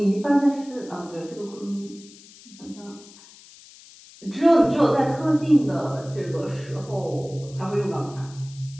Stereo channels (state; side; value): noise; left; hiss, 22 dB below the sound